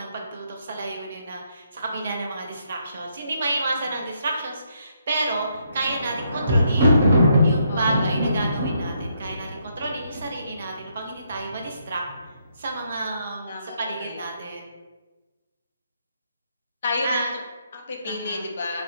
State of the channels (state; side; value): inverted; both; correlation -0.74